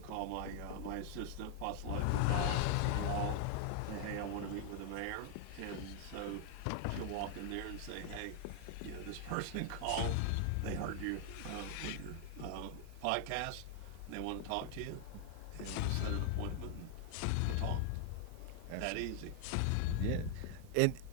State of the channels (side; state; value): both; different; correlation 0.00